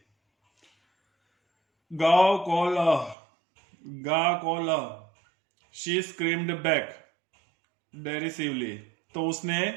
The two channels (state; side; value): drops out; left; at 3.2 s